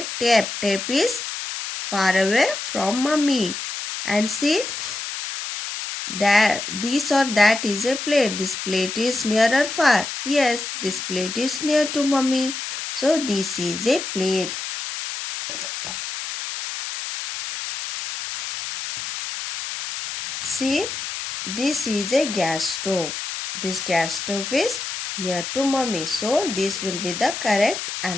tape. Tape is far away from mommy. And see, that this or that is a plate. This plate is near or far? Yes, this plate is near to mommy. So this is a plate. See, this is a gas stove. This gas stove is near to mommy. So this will be the correct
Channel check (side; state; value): left; noise; hiss, 6 dB below the sound